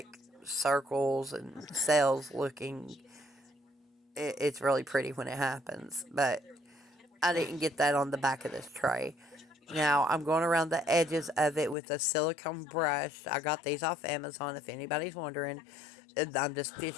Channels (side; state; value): right; drops out; at 11.8 s